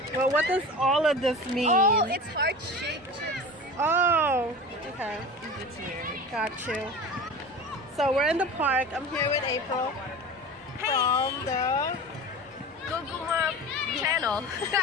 Well, what does all of this mean? Oh, it's heart-shaped chips. Oh, okay. It's weird. Got you. So we're in the park. I'm here with April from the Goguma channel. I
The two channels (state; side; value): normal; both; correlation 0.33